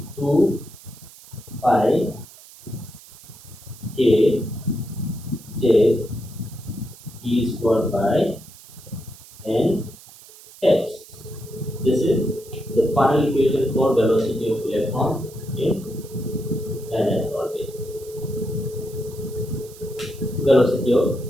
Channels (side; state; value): right; noise; hiss, 20 dB below the sound